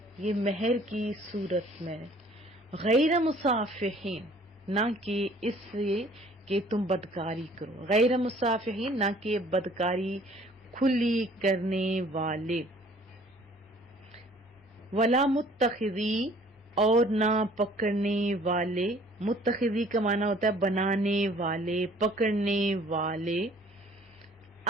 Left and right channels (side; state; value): both; normal; correlation 0.55